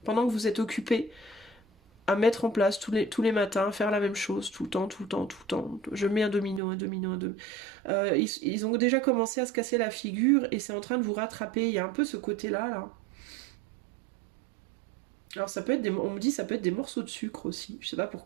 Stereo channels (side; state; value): left; drops out; at 6.6 s